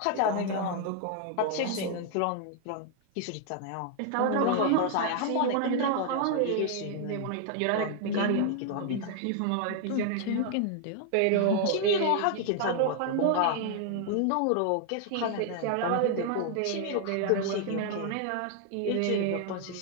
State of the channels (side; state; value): both; different; correlation 0.00